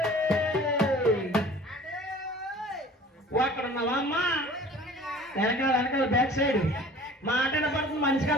అక్కడ ఉన్నావా అమ్మా? వెనకాల వెనకాల బ్యాక్ సైడ్ మాట కనపడుతుంది, మనిషి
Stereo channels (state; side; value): normal; both; correlation 0.46